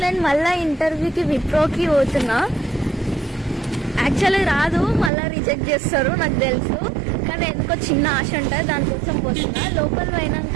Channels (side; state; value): left; drops out; at 5.1 s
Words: నేను మళ్ళీ ఇంటర్వ్యూకి విప్రోకి పోతున్నా. యాక్చువల్లీ రాదు, మళ్ళీ రిజెక్ట్ చేస్తారు నాకు తెలుసు. కానీ ఎందుకో చిన్న ఆశ ఉంటుంది, దానికోసం పోతున్నా. లోపల